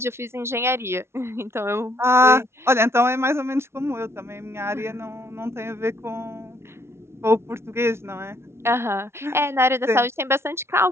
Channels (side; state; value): left; late; 0.12 ms